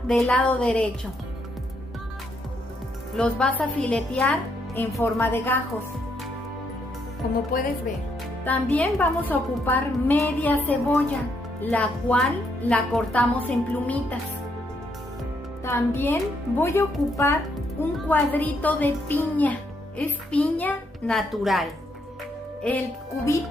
del lado derecho. Los vas a filetear en forma de gajos, como puedes ver. También vamos a ocupar media cebolla, la cual la cortamos en plumitas. También voy a ocupar un cuadrito de piña, es piña natural. El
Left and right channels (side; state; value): both; normal; correlation 0.75